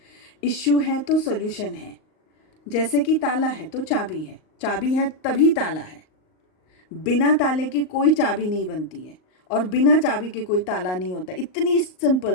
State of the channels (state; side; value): late; right; 38 ms